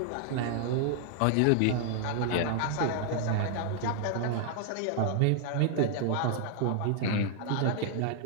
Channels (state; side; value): different; both; correlation 0.00